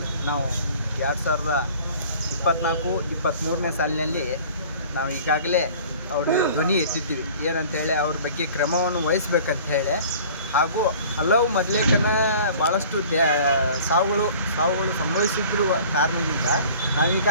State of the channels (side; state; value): both; inverted; correlation -0.47